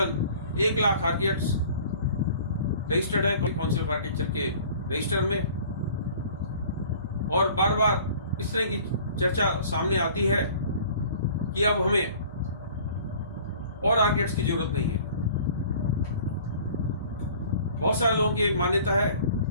1 लाख आर्किटेक्ट्स रजिस्टर्ड है काउंसिल ऑफ आर्किटेक्चर के रजिस्टर में, और बार बार इस तरह की चर्चा सामने आती है कि अब हमें और आर्किटेक्ट्स की जरूरत नहीं है। बहुत सारे लोगों की एक मान्यता है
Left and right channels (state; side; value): inverted; both; correlation -0.49